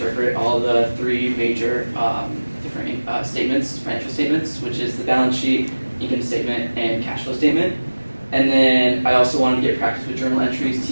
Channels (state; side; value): inverted; both; correlation -1.00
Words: all the three major different statements, financial statements, which is the balance sheet, income statement, and cash flow statement. And then I also wanted to get practice with journal entries,